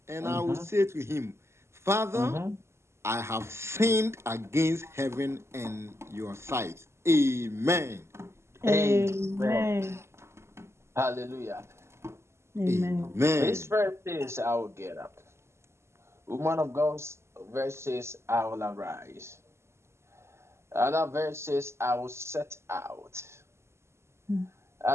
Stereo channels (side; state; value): left; late; 0.13 ms